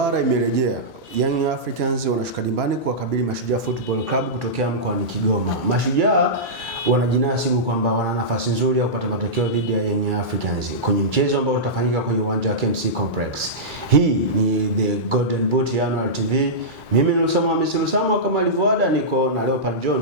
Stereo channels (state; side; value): normal; both; correlation -0.14